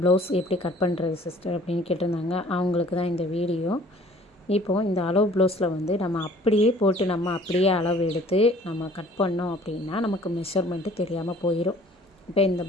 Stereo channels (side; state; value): both; normal; correlation 0.53